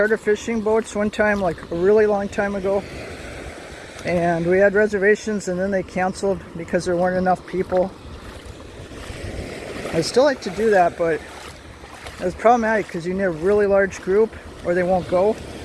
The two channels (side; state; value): both; identical; correlation 1.00